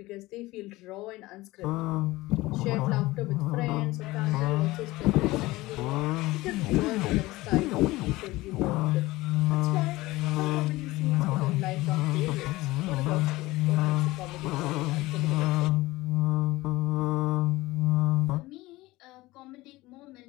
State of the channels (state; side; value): quieter; right; 19.4 dB